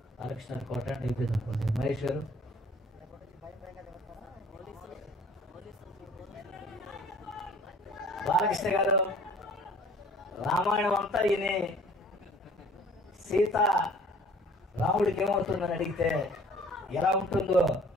బాలకృష్ణ కోట అయిపోయింది అనుకోండి, మహేష్ గారు, బాలకృష్ణ గారు, రామాయణం అంతా ఈయన సీత రాముడికి ఏమవుతుందని అడిగితే ఎలా ఉంటుందో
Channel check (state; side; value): normal; both; correlation 0.52